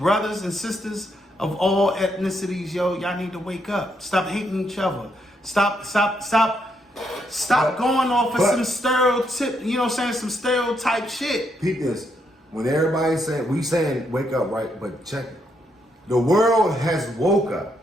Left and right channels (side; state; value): both; normal; correlation 0.77